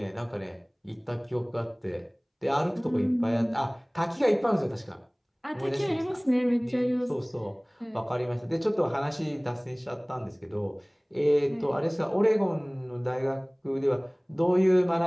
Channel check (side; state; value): both; identical; correlation 1.00